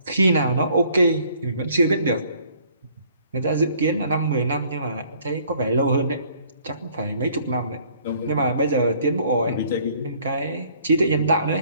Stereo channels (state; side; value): inverted; both; correlation -0.60